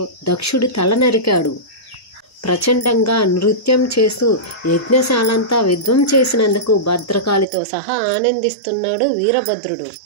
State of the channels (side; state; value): left; drops out; at 7.5 s